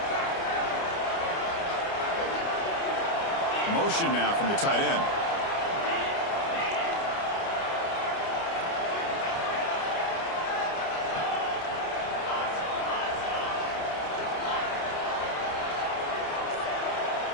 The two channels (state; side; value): late; right; 29 ms